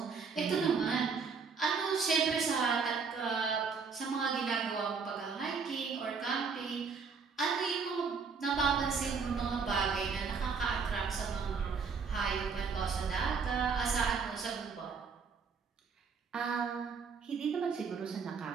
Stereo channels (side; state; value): left; quieter; 5.4 dB